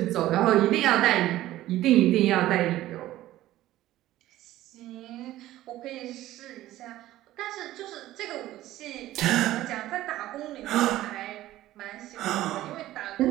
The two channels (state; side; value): quieter; left; 15.0 dB